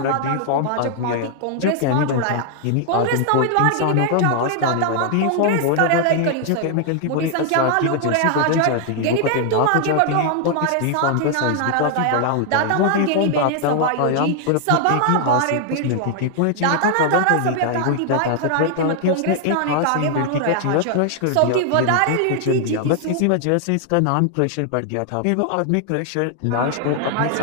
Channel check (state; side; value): different; both; correlation 0.00